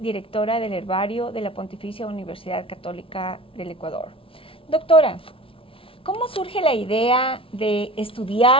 del herbario de la Pontificia Universidad Católica del Ecuador. Doctora, ¿cómo surge la idea de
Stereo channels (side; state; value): right; late; 0.26 ms